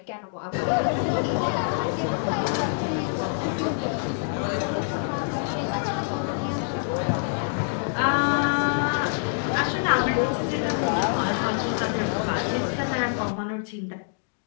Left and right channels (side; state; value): right; silent; digital silence